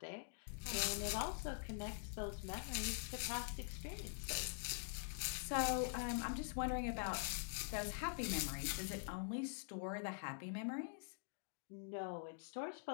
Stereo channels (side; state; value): right; silent; digital silence